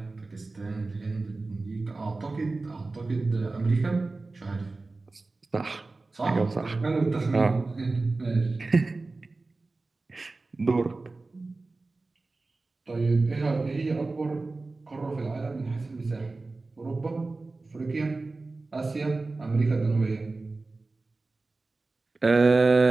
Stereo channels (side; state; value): left; quieter; 3.5 dB